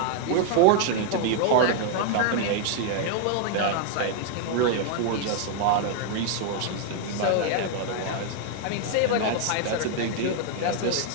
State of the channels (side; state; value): both; different; correlation 0.00